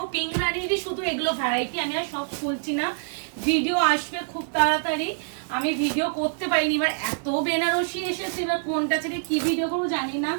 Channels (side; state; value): left; silent; digital silence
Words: পিঙ্ক রানীরই শুধু এগুলো ভ্যারাইটি, আমি আর সব খুলছি না, ভিডিও আসবে খুব তাড়াতাড়ি, আমি ভিডিও করতে পারিনি। এবার এত বেনারসি এসেছে, এবার কোনটা ছেড়ে কি ভিডিও করবো জানি না।